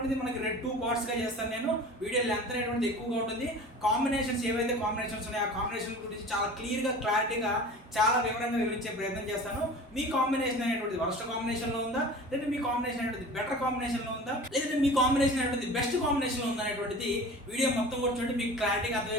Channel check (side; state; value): both; normal; correlation 0.39